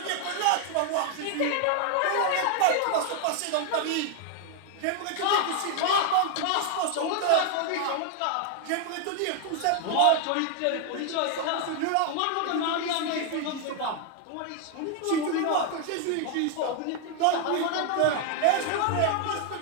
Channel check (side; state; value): both; different; correlation 0.00